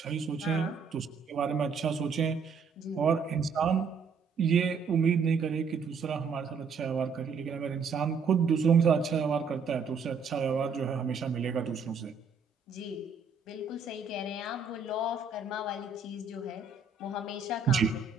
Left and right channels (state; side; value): quieter; left; 5.2 dB